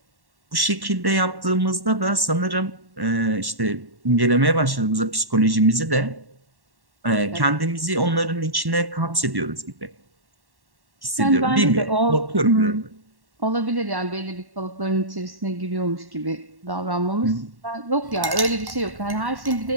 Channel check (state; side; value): late; left; 1.1 ms